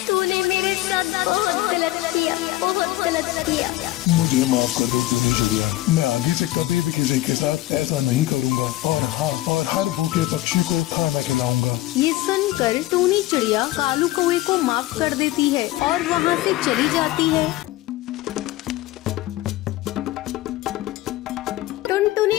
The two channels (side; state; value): right; quieter; 16.6 dB